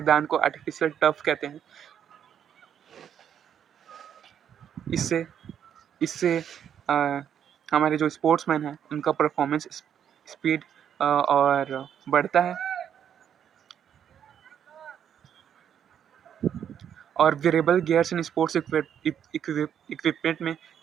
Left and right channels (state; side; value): quieter; left; 8.9 dB